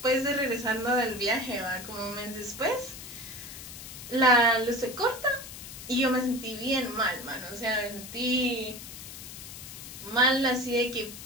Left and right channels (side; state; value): left; noise; hiss, 12 dB below the sound